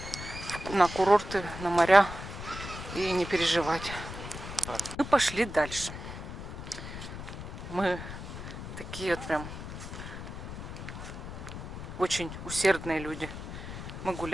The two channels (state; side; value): noise; left; rumble, 9 dB below the sound